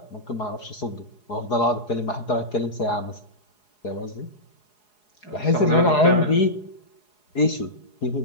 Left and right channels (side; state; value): right; late; 4.8 ms